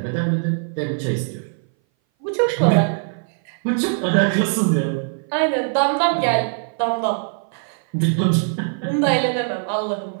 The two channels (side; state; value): left; silent; 60 dB below the other